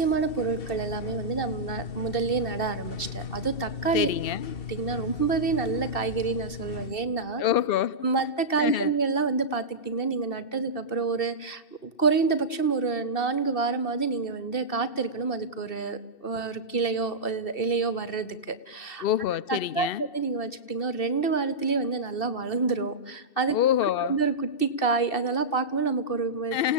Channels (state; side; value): late; right; 2.7 ms